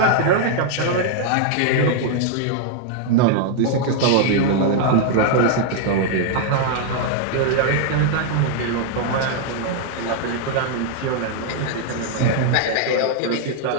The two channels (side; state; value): both; different; correlation 0.00